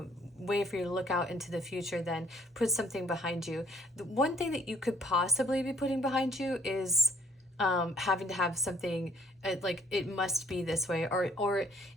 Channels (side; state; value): both; normal; correlation 0.62